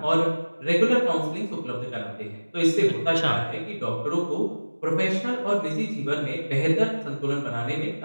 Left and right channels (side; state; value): both; inverted; correlation -1.00